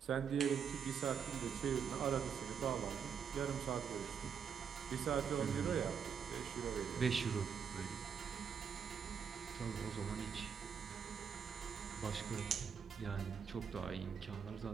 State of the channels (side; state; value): left; quieter; 7.0 dB